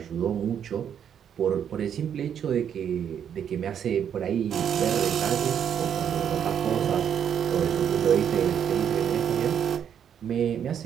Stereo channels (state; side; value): quieter; left; 8.7 dB